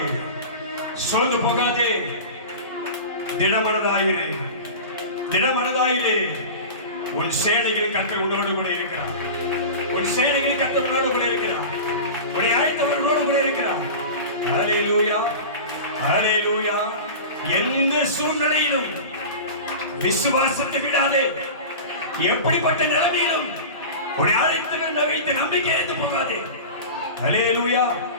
சோர்ந்து போகாதே, திடமனதாயிரு, திடமனதாயிரு. உன் சேனைகளின் கர்த்தர் உன்னோடு கூட இருக்கிறார், உன் சேனைகளின் கர்த்தர் உன்னோடு கூட இருக்கிறார், உன்னை அழைத்தவர் உன்னோடு கூட இருக்கிறார். ஹல்லேலூயா, ஹல்லேலூயா. எந்த சூழ்நிலையிலும் விசுவாசத்தை விடாதே. எப்படிப்பட்ட நிலைமையிலும் உன்னை அழைத்தவர் வைத்து நம்பிக்கை இழந்து போகாதே. ஹல்லேலூயா,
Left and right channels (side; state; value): both; inverted; correlation -0.31